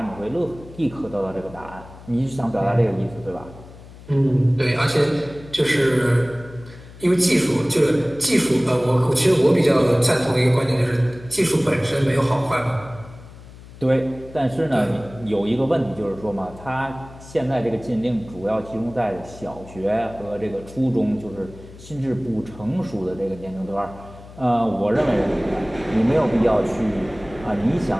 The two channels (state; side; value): noise; left; hum, 18 dB below the sound